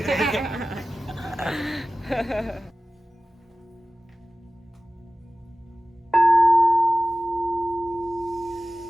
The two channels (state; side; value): normal; both; correlation 0.96